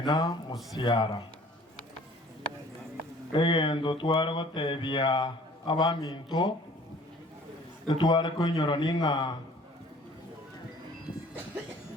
musiara egendo tware gotebia abaminto etware kunyoro ninga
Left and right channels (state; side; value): normal; both; correlation 0.52